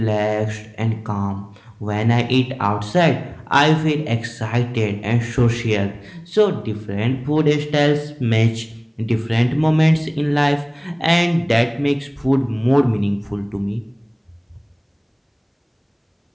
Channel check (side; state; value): both; identical; correlation 1.00